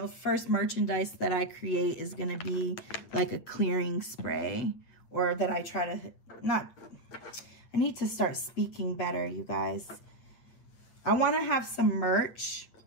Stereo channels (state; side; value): late; right; 8.7 ms